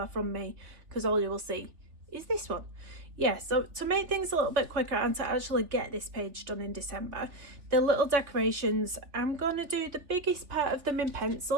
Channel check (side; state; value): left; late; 3.7 ms